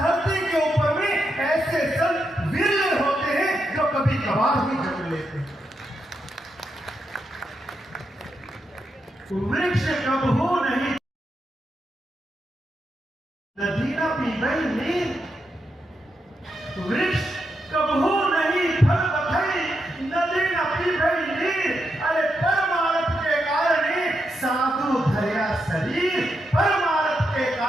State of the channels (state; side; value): normal; both; correlation 0.84